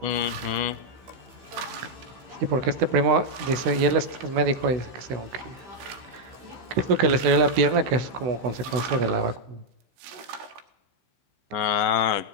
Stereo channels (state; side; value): late; left; 16 ms